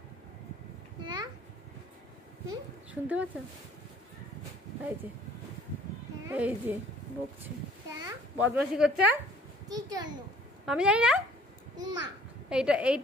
হ্যাঁ, শুনতে পাচ্ছ? এই যে হ্যাঁ, এই যে বকছে, হ্যাঁ। বদমাশি করছে। কি জন্য? আমি জানি না। মা,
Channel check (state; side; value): normal; both; correlation 0.55